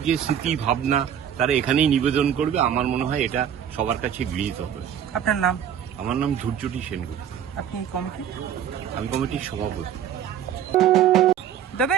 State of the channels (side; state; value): left; quieter; 9.3 dB